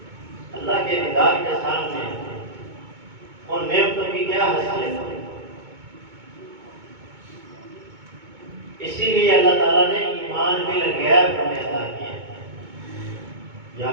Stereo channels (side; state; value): left; late; 2.2 ms